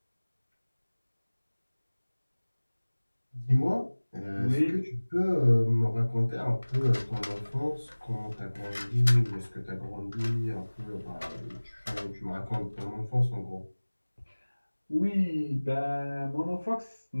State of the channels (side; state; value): both; inverted; correlation -1.00